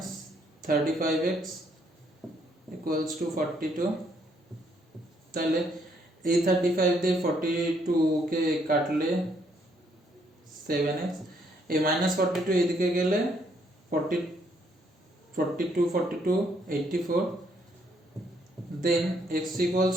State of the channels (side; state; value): both; normal; correlation 0.70